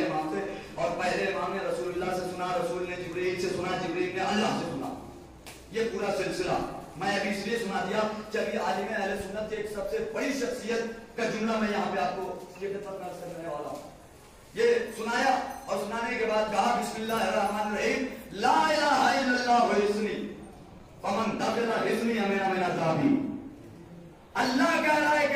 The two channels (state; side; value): identical; both; correlation 1.00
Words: امام سے, اور پہلے امام نے رسول اللہ سے سنا, رسول نے جبرائیل سے سنا, جبرائیل نے اللہ سے سنا. یہ پورا سلسلہ میں ابھی اس لیے سنا دیا کہ ابھی عالم اہل سنت کی ایک سب سے بڑی شخصیت کا جملہ میں یہاں پہ آپ کو یہ خدمت میں عرض کرنے والا ہوں. یہ سنایا اور سنانے کے بعد کہا بسم اللہ الرحمن الرحیم لا الہ الا اللہ حسنی فمن دخل حسنی من عذابی. اللہ کہہ رہا ہے